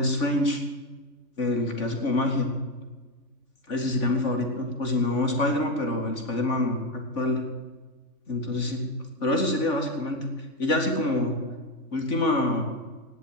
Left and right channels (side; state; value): right; late; 3.5 ms